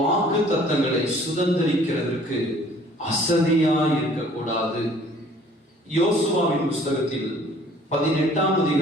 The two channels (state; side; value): normal; both; correlation 0.55